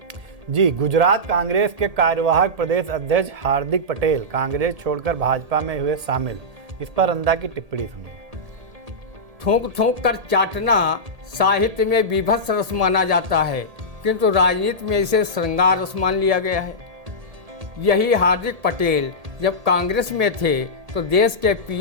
जी, गुजरात कांग्रेस के कार्यवाहक प्रदेश अध्यक्ष हार्दिक पटेल कांग्रेस छोड़कर भाजपा में हुए शामिल। इस पर रंधा की टिप्पणी सुनिए। थूक थूक कर चाटना साहित्य में विभत्स रस माना जाता है, किंतु राजनीति में इसे श्रृंगार रस मान लिया गया है। यही हार्दिक पटेल जब कांग्रेस में थे तो देश के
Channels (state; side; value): late; left; 1.8 ms